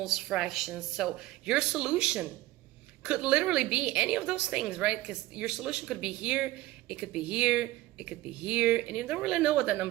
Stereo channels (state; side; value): quieter; left; 16.9 dB